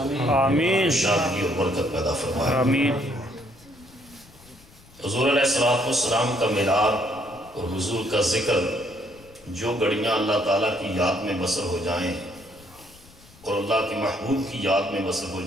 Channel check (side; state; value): left; noise; rumble, 25 dB below the sound